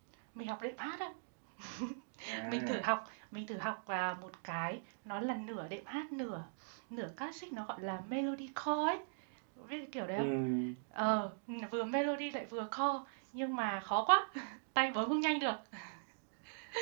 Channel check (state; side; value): silent; left; digital silence